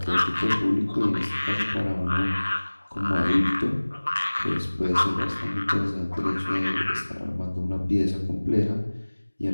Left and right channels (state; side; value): inverted; both; correlation -1.00